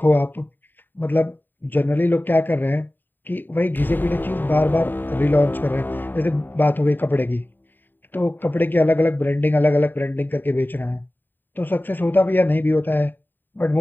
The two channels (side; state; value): right; late; 0.092 ms